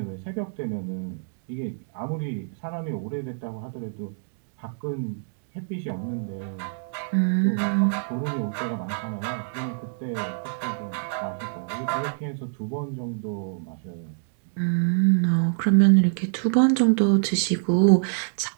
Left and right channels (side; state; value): left; silent; digital silence